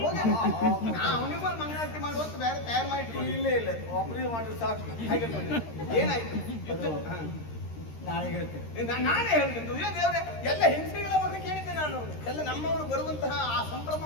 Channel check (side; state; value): right; late; 13 ms